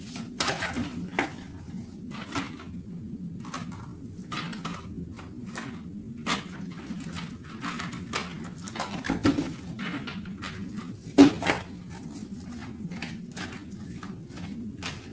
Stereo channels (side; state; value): both; identical; correlation 1.00